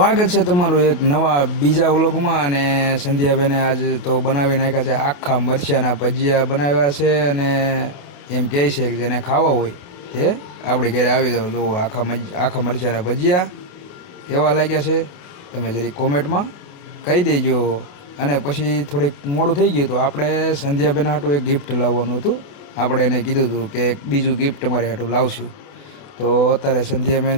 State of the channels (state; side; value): late; right; 28 ms